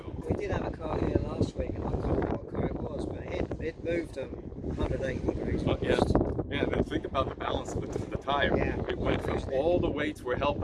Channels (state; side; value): identical; both; correlation 1.00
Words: We did have a car here last week, and I can't remember what car it was, but it moved 180 degrees. But yeah, then think about the balance of the tire. Yeah. It went from all the weights were